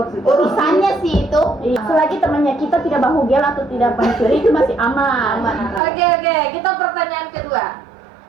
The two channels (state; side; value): drops out; left; at 5.8 s